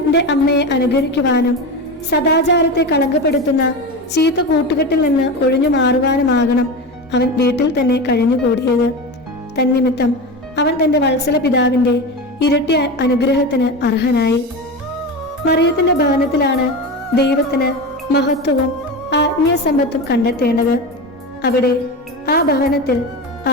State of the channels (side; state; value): both; normal; correlation 0.23